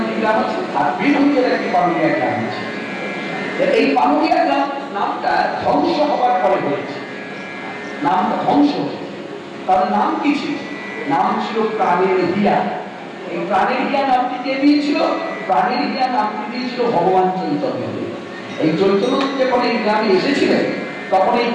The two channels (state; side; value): identical; both; correlation 1.00